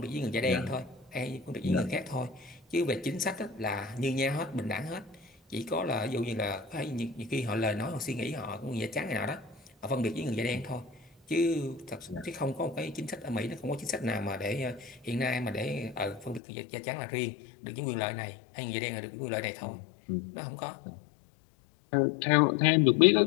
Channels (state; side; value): drops out; right; at 16.4 s